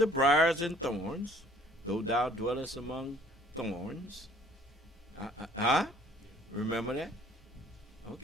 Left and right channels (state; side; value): normal; both; correlation 0.56